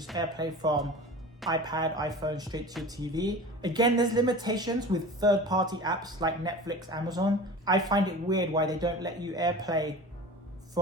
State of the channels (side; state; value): both; normal; correlation 0.36